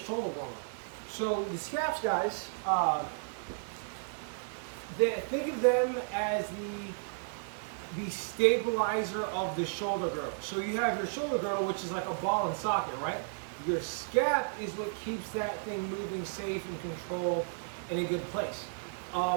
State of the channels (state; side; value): silent; left; digital silence